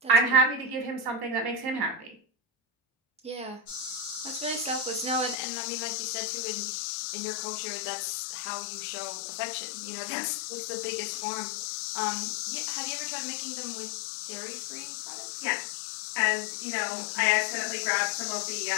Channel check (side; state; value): right; drops out; at 5.4 s